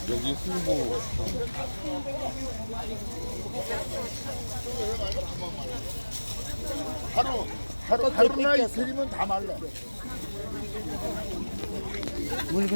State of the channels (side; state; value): both; inverted; correlation -1.00